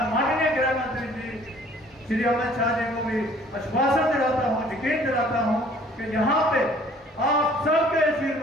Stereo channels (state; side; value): normal; both; correlation 0.55